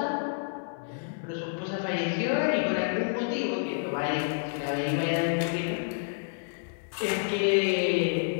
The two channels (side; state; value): right; silent; digital silence